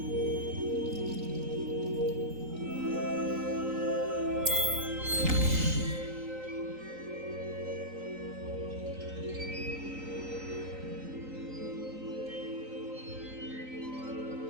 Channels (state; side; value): late; left; 3.9 ms